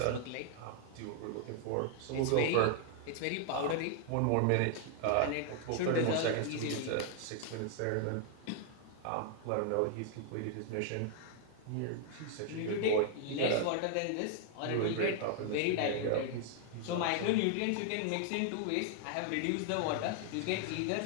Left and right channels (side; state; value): both; different; correlation 0.00